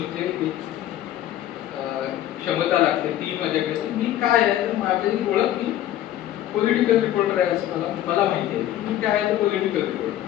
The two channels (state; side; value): quieter; right; 12.6 dB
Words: जे क्षमता लागते ती माझ्याकडे. मी काय आहे तर माझी ओळख मी पॉलिटिकल रिपोर्टर आहे असं मला माहिती आहे. मी काय आहे तर पॉलिटिकल रिपोर्टर.